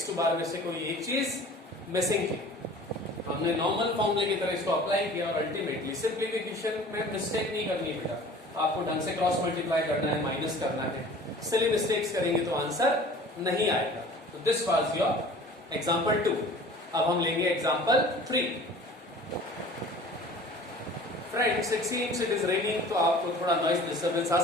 बार में से कोई एक चीज मिसिंग थी. हमने नॉर्मल फॉर्मूले की तरह इसको अप्लाई किया और अल्टीमेटली सिंप्लीफिकेशन में मिस्टेक नहीं करनी बेटा. आपको ढंग से क्रॉस मल्टीप्लाई करना है, माइनस करना है. सिली मिस्टेक्स करेंगे तो आंसर नहीं आएगा. तो दिस वाज योर एग्जांपल 2. अब हम लेंगे example 3. Friends, it seems it is raining, तो आपको थोड़ा नॉइज डिस्टर्बेंस आ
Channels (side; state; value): both; normal; correlation 0.44